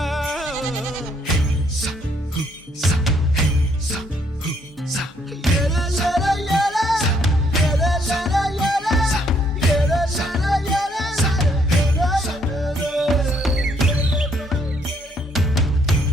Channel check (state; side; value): normal; both; correlation 0.69